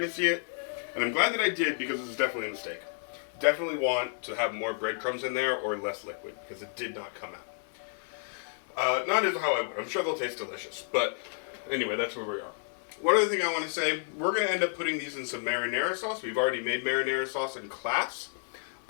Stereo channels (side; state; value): right; silent; 57 dB below the other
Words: to see it. And I'm glad that I did, because it was definitely a mistake. Definitely want to have more breadcrumbs in there or less liquid, because it did not come out. Not as how I would. I'm sure they'll taste delicious. But anyway, that's where we are. One other thing I want to say, we're going to end up putting these in some marinara sauce. We've already made marinara sauce in class.